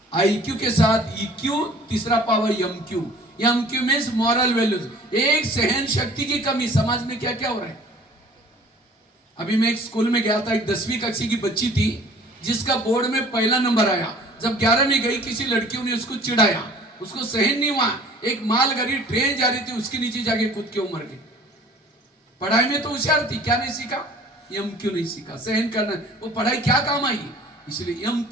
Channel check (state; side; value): normal; both; correlation 0.50